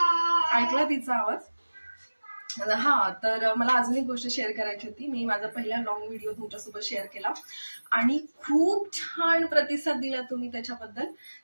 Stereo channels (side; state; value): both; inverted; correlation -1.00